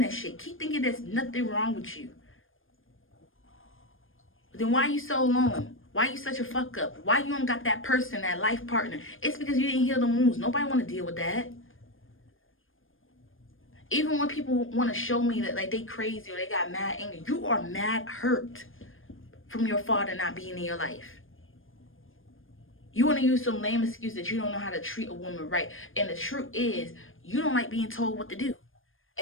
that shit. Keep thinking there's nothing wrong with you. Then why you so alone? Why you such a fuck up? Why you don't got that person, that life partner? It's because you didn't heal the wounds. Nobody want to deal with that. Even when people want to show me that like they crazy or they got mad anger, you are mad hurt from your father not being in your life. You want to use some lame excuse that you don't know how to treat a woman right. And the truth is, you don't like being told what to do.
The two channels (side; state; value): right; late; 0.59 ms